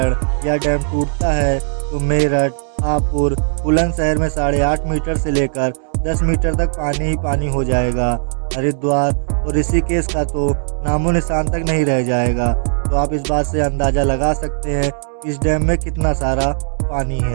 यह डैम टूटता है तो मेरठ, हापुड़, बुलंदशहर में 8.5 मीटर से लेकर 10 मीटर तक पानी ही पानी हो जाएगा। हरिद्वार और ऋषिकेश का तो नामो निशान तक नहीं रह जाएगा। तो आप इस बात से अंदाज़ा लगा सकते हैं कि इस डैम में कितना सारा पानी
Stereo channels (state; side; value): silent; left; 68 dB below the other